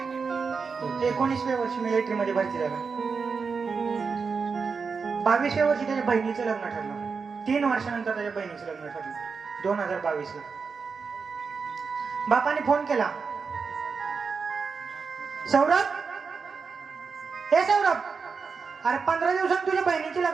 19व्या वर्षी मिलिटरी मध्ये भरती झाला. 22व्या वर्षी त्याच्या बहिणीचं लग्न ठरलं. 3 वर्षानंतर त्याच्या बहिणीचं लग्न ठरलं 2022 ला. बापाने फोन केला, सौरभ, हे सौरभ, अरे 15 दिवसांनी तुझ्या बहिणीची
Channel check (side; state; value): left; quieter; 5.2 dB